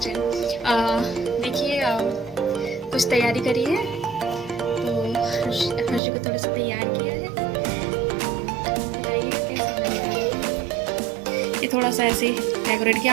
देखिए कुछ तैयारी करी है, तो हर्ष को थोड़ा सा तैयार किया है। बताइए कैसे लग रहा है। ये थोड़ा सा ऐसे डेकोरेट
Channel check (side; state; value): left; drops out; at 6.0 s